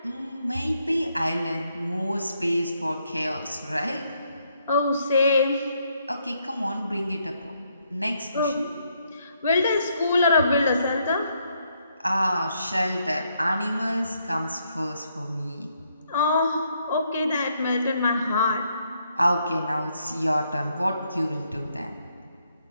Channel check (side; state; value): both; inverted; correlation -0.75